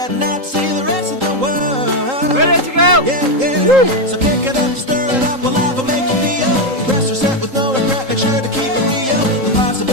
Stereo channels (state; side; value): late; left; 3.8 ms